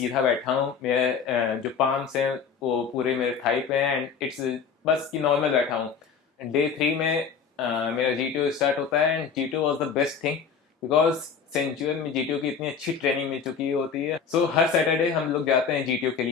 बैठा हूँ, मेरे जो पाम्स हैं वो पूरे मेरे थाई पे हैं एंड इट्स बस कि नॉर्मल बैठा हूँ। डे 3 में मेरा जीटीओ स्टार्ट होता है and GTO was the best thing because सेंचुअल में जीटीओ की इतनी अच्छी ट्रेनिंग मिल चुकी होती है। सो हर सैटरडे हम लोग जाते हैं जीटीओ के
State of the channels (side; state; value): right; quieter; 6.3 dB